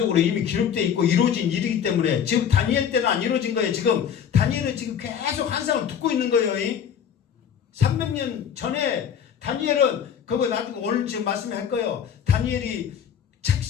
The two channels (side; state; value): right; quieter; 8.3 dB